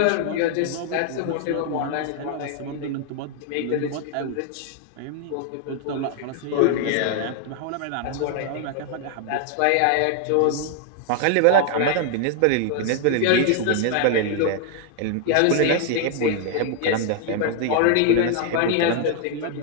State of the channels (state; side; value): different; both; correlation 0.00